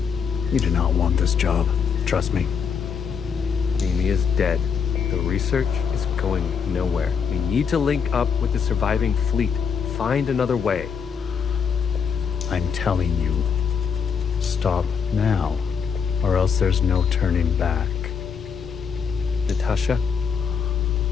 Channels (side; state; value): right; quieter; 6.5 dB